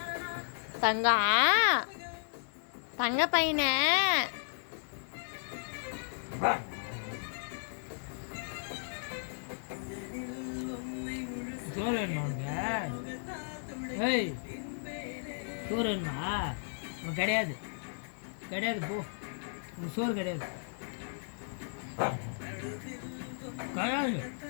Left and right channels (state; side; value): silent; right; digital silence